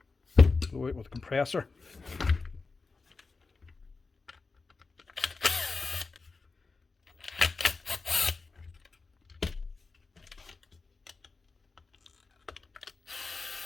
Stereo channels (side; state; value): right; quieter; 4.1 dB